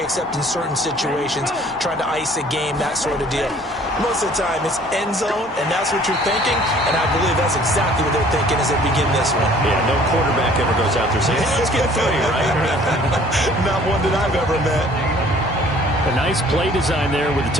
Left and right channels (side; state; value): both; normal; correlation 0.54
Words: except in certain situations, trying to ice a game, that sort of deal. Most of the time, it's end zone, and that's what you're thinking, and I believe that's exactly what they're thinking as they begin this one. Yeah, no quarterback ever goes out there saying, hey, let's get 3, right? Not one that I've ever met. A nice play design there with the